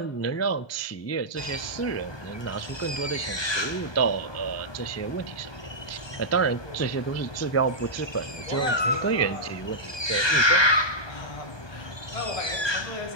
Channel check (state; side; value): late; right; 1.2 ms